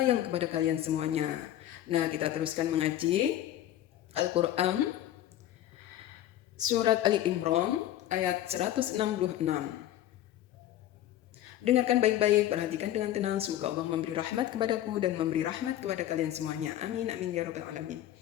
kepada kalian semuanya. Nah, kita teruskan mengaji Al-Quran Surat Ali Imran ayat 166. Dengarkan baik-baik, perhatikan dengan tenang. Semoga Allah memberi rahmat kepadaku dan memberi rahmat kepada kalian semuanya. Amin, amin, ya Rabbal Alamin.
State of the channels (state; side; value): quieter; right; 12.8 dB